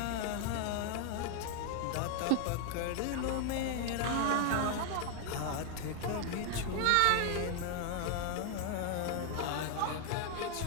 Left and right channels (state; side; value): different; both; correlation 0.00